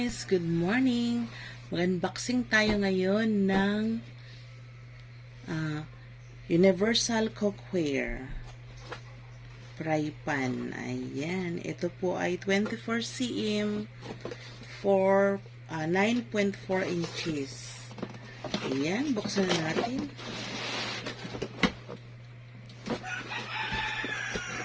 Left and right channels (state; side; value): identical; both; correlation 1.00